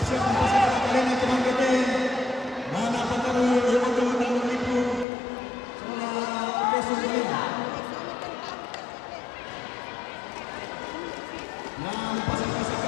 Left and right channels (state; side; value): drops out; right; at 5.1 s